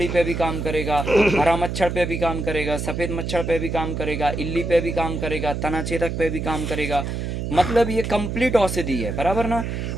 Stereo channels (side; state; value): right; noise; hum, 4 dB below the sound